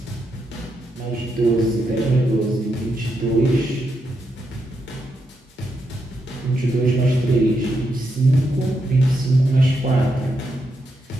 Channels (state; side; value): normal; both; correlation 0.82